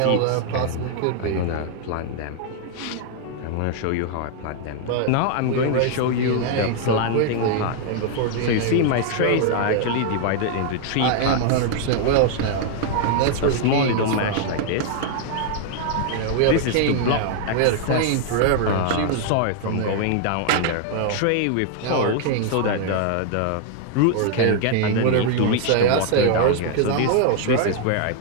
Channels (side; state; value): both; different; correlation 0.00